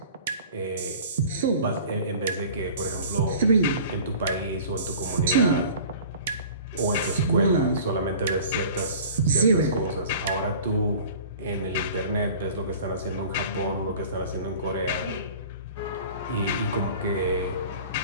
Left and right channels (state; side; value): inverted; both; correlation -0.43